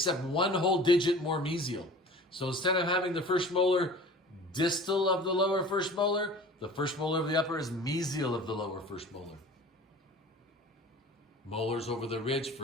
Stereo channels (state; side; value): normal; both; correlation 0.42